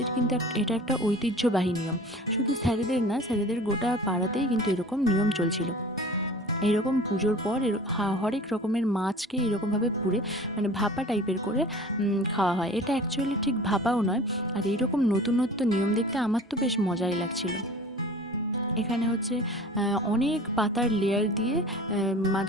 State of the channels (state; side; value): normal; both; correlation 0.42